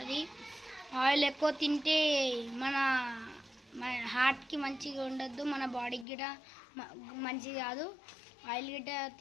ఆయిల్ ఎక్కువ తింటే మన హార్ట్కి మంచిగా ఉండద్దు, మన బాడీకి గిట్ట మంచిది కాదు. ఆయిల్ గిట్ట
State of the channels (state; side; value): drops out; right; at 6.1 s